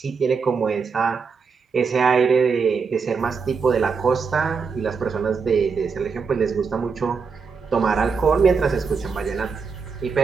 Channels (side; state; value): left; quieter; 5.4 dB